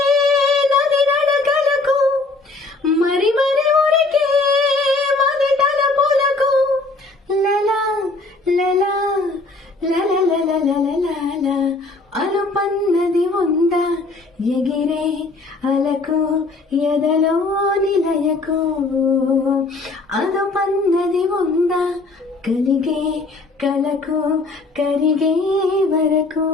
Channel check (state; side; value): quieter; right; 3.4 dB